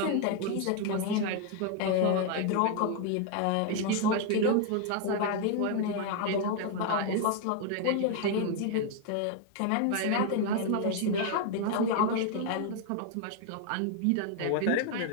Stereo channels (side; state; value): both; different; correlation 0.00